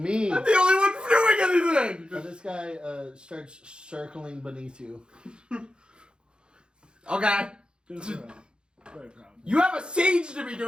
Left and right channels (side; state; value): left; late; 0.051 ms